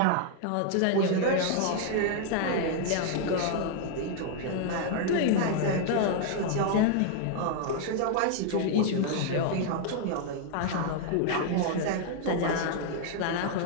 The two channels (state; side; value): different; both; correlation 0.00